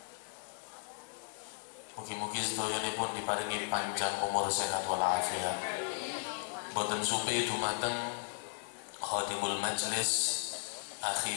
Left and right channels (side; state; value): right; silent; digital silence